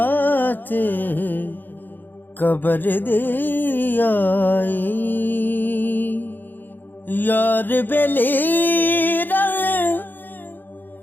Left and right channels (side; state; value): right; late; 0.090 ms